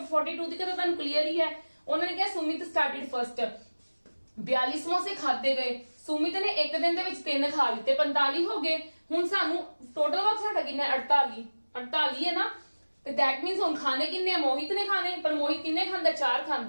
ਦੀ ਤਾਂ ਤੁਹਾਨੂੰ ਕਲੀਅਰ ਹੀ ਹੈ। ਉਹਨਾਂ ਨੇ ਕਿਹਾ ਸੁਮਿਤ ਸਟਾਰਟਡ ਫਰਸਟ 42 ਸਮੋਸੇ ਖਾਦੇ ਗਏ ਸੁਮਿਤ ਨੇ ਇੱਕ ਦਿਨ ਦੇ ਵਿੱਚ 3 ਖਾ ਲਿੱਤੇ 45 ਹੋ ਗਏ। ਹੁਣ ਸਾਨੂੰ ਟੋਟਲ ਵਕਤ ਸਾਡਾ ਕਿੰਨਾ 48 ਹੈ ਨਾ ਤੇ ਦੈਟ ਮੀਨਸ ਹੁਣ ਖਾਣੇ ਕਿੰਨੇ ਮੋਹਿਤ ਨੇ ਖਾਣੇ ਪਰ ਮੋਹਿਤ ਕਿੰਨੇ ਖਾਂਦਾ 4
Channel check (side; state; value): both; inverted; correlation -1.00